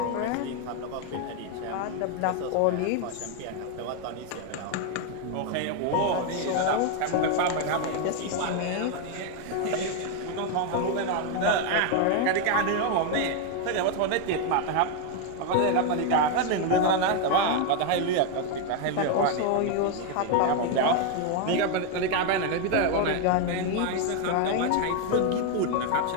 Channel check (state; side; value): different; both; correlation 0.01